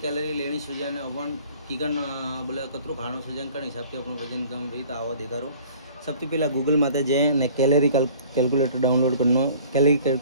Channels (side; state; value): both; inverted; correlation -0.50